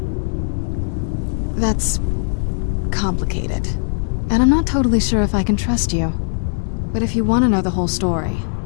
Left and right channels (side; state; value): right; silent; digital silence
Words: That's... complicated. And I'm not totally sure if I can trust you. But if you want to know the whole story,